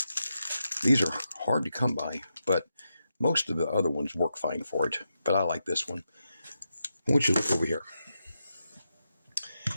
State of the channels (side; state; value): both; inverted; correlation -0.86